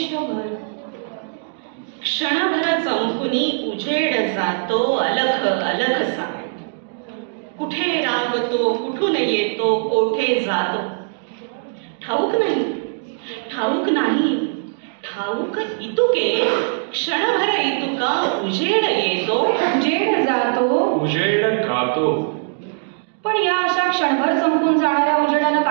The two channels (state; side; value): silent; left; digital silence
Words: क्षणभर चमकुनी उजेड जातो अलख अलखसा. कुठे रावतो, कुठून येतो, कोठे जातो, ठाऊक नाही, ठाऊक नाही. ठाऊक इतुके, क्षणभर इतुका उजेड येतो, उजेड जातो, उजेड गातो. पण या अशा क्षणभर संपून जाणाऱ्या उजेडानं